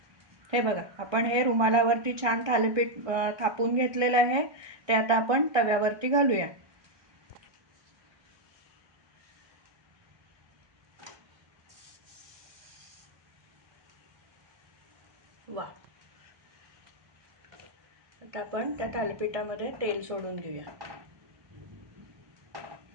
हे बघा, आपण हे रुमालावरती छान थालीपीठ थापून घेतलेलं आहे. ते आता आपण तव्यावरती घालूया. वा, आता आपण त्या थालीपीठामध्ये तेल सोडून घेऊया.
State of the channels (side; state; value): left; late; 1.2 ms